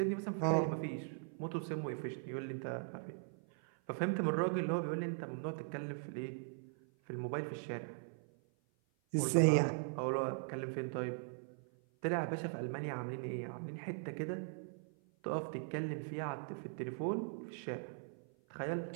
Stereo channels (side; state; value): left; silent; 51 dB below the other